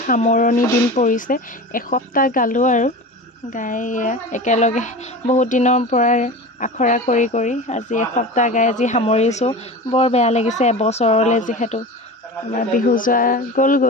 সামৰণি দিন পৰিছে। এসপ্তাহ গালোঁ আৰু গাই একেলগে বহুত দিনৰ পৰা আখৰা কৰি আজি এসপ্তাহ গাই আজি সামৰিছোঁ। বৰ বেয়া লাগিছে, এবছৰলৈ যিহেতু আমাৰ বিহু যোৱা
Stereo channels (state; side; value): normal; both; correlation 0.31